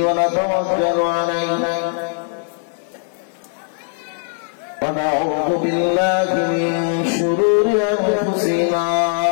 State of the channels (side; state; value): right; silent; 56 dB below the other